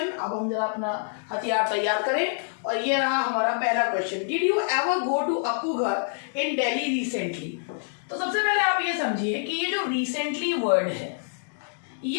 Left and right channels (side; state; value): right; silent; digital silence